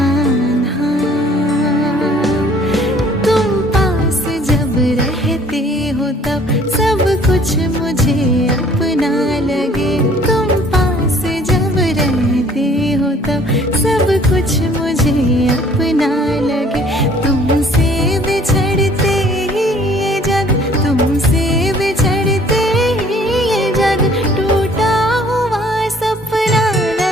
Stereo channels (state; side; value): normal; both; correlation 0.56